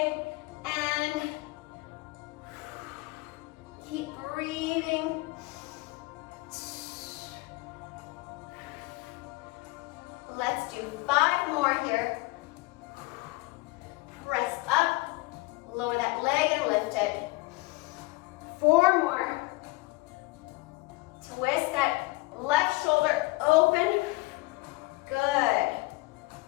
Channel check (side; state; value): right; quieter; 22.5 dB